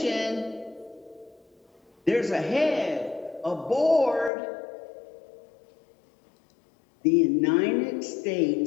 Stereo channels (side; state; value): right; drops out; at 4.3 s